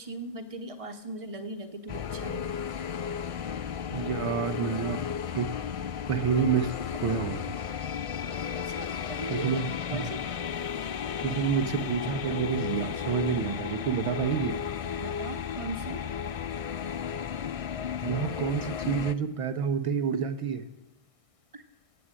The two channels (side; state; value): left; late; 1.6 ms